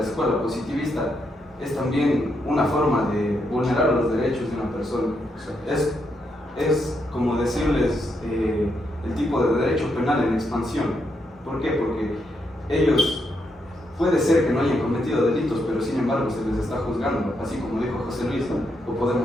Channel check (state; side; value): normal; both; correlation 0.80